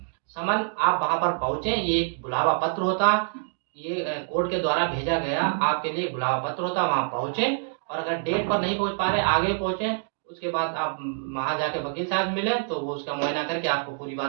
समन आप वहाँ पर पहुँचे, ये एक बुलावा पत्र होता, ये कोर्ट के द्वारा भेजा गया आपके लिए बुलावा पत्र होता, वहाँ पहुँचे और अगर डेट पर नहीं पहुँच पा रहे, आगे पहुँचे, उसके बाद आप वहाँ जाके वकील साहब मिले तो वो उसका मुआयना करके आपको पूरी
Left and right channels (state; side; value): silent; left; digital silence